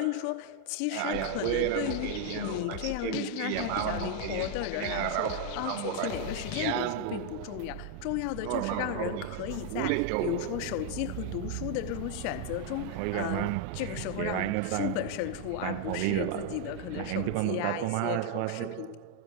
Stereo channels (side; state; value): both; different; correlation 0.00